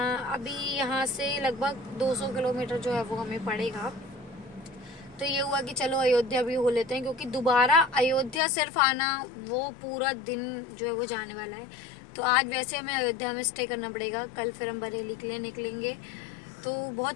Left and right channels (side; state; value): right; drops out; at 8.4 s